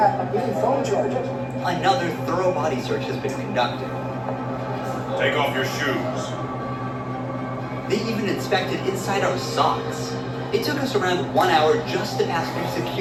even phone chargers. Another thorough body search has been conducted. Take off your shoes. They even inspected inside our socks. It took us around 1 hour just to pass through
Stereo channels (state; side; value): identical; both; correlation 1.00